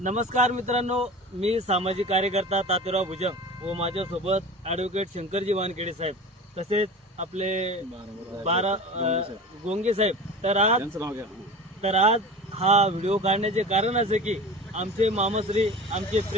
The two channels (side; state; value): both; normal; correlation 0.34